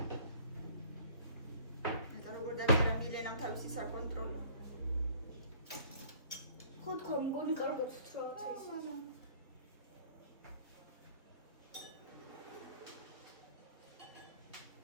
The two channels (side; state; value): both; inverted; correlation -0.53